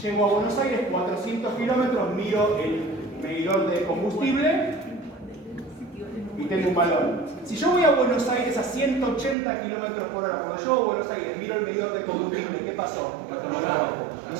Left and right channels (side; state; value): left; drops out; at 9.3 s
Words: llego a Buenos Aires 400 kilómetros, miro el medidor de combustible y tengo un valor. Si yo voy a Buenos Aires a 180 kilómetros por hora, cuando llego a Buenos Aires miro el medidor de combustible, ¿qué pasó? No